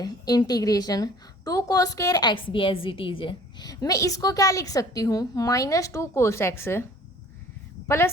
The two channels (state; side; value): normal; both; correlation 0.50